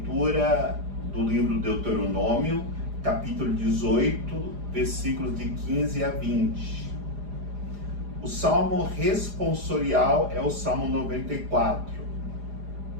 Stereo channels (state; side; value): late; left; 4.9 ms